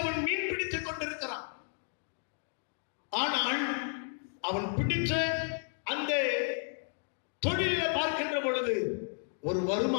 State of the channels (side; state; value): right; silent; 56 dB below the other